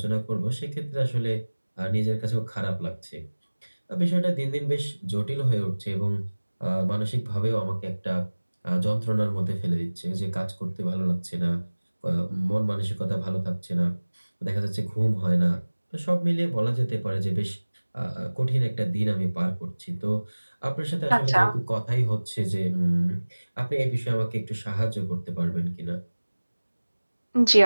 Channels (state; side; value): inverted; both; correlation -1.00